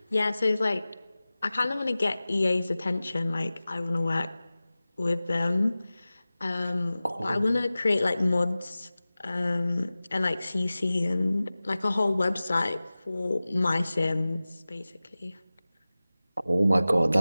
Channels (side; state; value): both; inverted; correlation -0.97